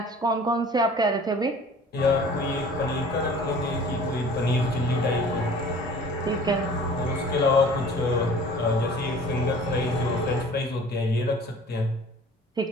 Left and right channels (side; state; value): both; normal; correlation 0.47